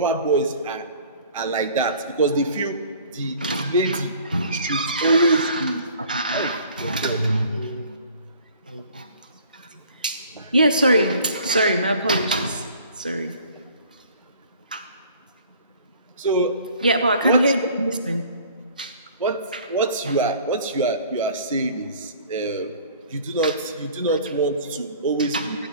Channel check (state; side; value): inverted; both; correlation -0.51